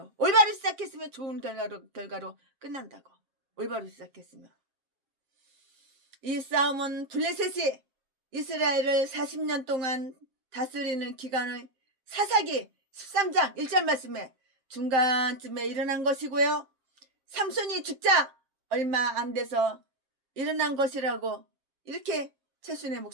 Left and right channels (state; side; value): late; left; 7.5 ms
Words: 올바로 시작했으면 좋은 결과로 끝난다고. 올바로 시작했으면. 이 싸움은 블레셋이 이스라엘을 40년 동안 다스리는 기간의 사사기 13장 1절 말씀에 중간쯤에 일어난 것이고요. 삼손이 죽자 얼마 안 돼서 일어난 것이라고 이렇게 최순애